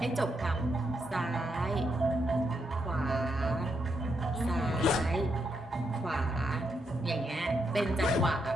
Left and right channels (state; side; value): normal; both; correlation 0.80